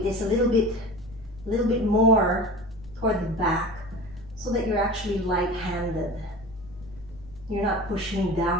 is a little bit more toward the back so that you're actually light-handed. You're not pushing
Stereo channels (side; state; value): left; noise; rumble, 20 dB below the sound